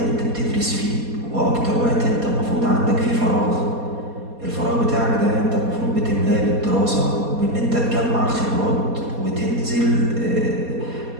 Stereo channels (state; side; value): late; left; 4.2 ms